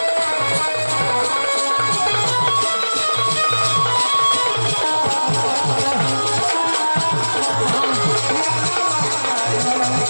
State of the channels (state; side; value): inverted; both; correlation -1.00